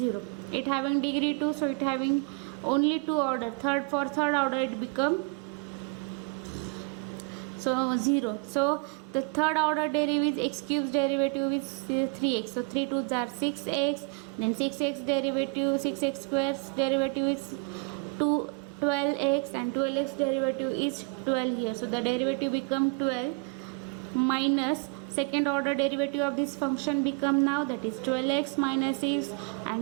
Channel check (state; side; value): quieter; left; 33.0 dB